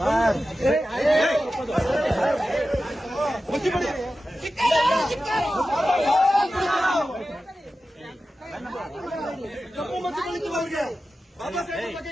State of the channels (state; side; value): normal; both; correlation 0.93